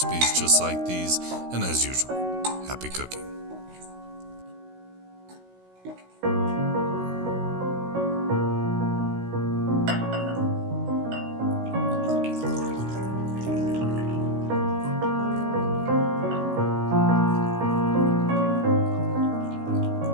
just like these, and as usual, happy cooking.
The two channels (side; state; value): left; late; 16 ms